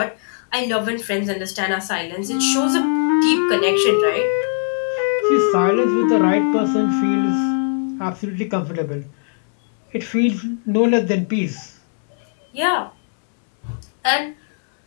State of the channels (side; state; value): right; silent; digital silence